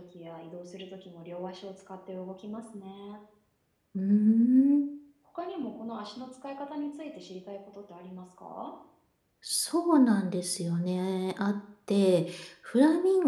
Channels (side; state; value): both; identical; correlation 1.00